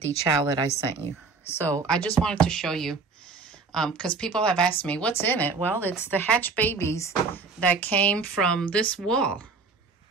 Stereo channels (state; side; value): quieter; left; 4.5 dB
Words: the chow that I sent you. So I just wanted to show you, because people have asked me, what's in it? Well, it's the hatch babies that came from this wall.